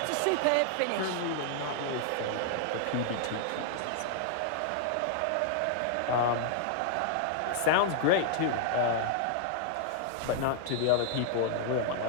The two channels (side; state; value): both; different; correlation 0.00